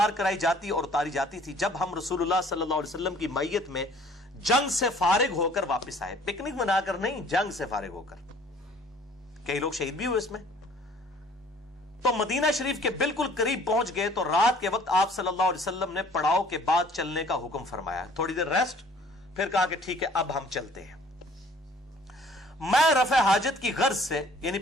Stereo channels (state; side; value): normal; both; correlation 0.55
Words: کرائی جاتی اور اتاری جاتی تھی جب ہم رسول اللہ صلی اللہ علیہ وسلم کی میت میں جنگ سے فارغ ہو کر واپس آئے. پکنک منا کر نہیں، جنگ سے فارغ ہو کر. کئی لوگ شہید بھی ہوئے اس میں. تو مدینہ شریف کے بالکل قریب پہنچ گئے تو رات کے وقت آپ صلی اللہ علیہ وسلم نے پڑاؤ کے بعد چلنے کا حکم فرمایا. تھوڑی دیر ریسٹ، پھر کہا کہ ٹھیک ہے اب ہم چلتے ہیں. میں رفع حاجت کی غرض سے، یعنی